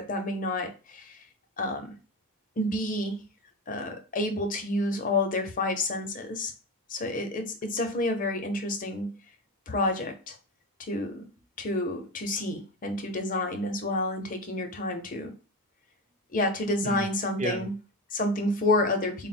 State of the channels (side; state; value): both; normal; correlation 0.20